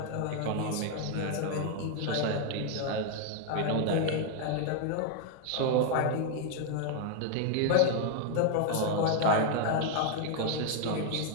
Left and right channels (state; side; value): different; both; correlation 0.00